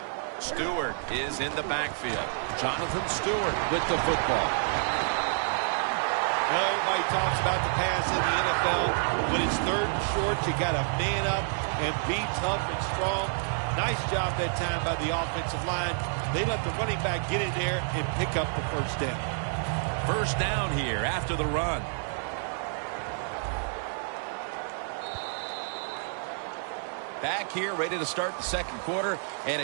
Stewart is in the backfield. Jonathan Stewart with the football. Well, everybody talks about the pass in the NFL. When it's third and short, you got to man up and be tough and strong. Nice job that time by the offensive line. They let the running back get in there and pick up the first down. First down here after the run. Back here, ready to start the second quarter. And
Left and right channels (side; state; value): left; silent; digital silence